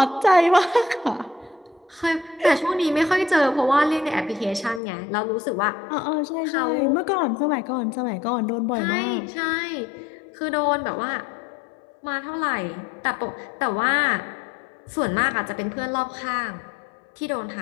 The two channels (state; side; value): drops out; right; at 4.8 s